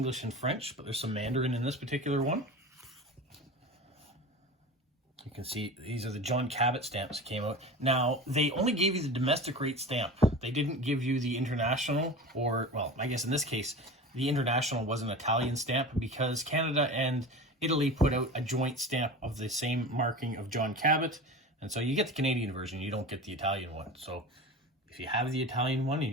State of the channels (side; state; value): both; normal; correlation 0.33